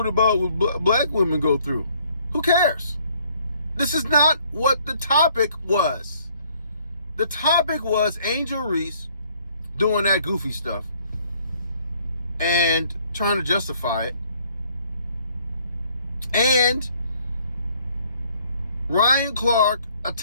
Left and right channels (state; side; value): inverted; both; correlation -0.62